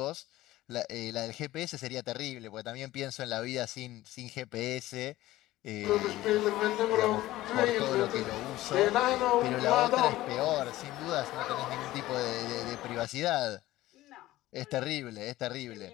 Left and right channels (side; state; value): right; quieter; 16.3 dB